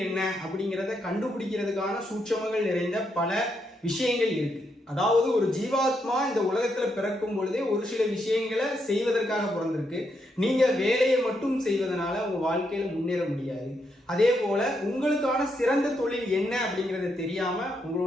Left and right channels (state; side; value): normal; both; correlation 0.79